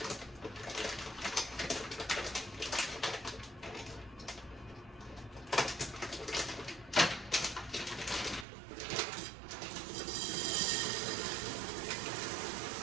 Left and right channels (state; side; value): drops out; left; at 8.5 s